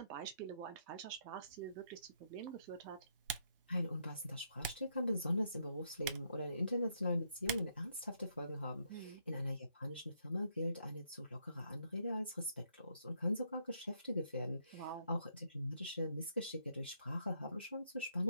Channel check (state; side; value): inverted; both; correlation -0.75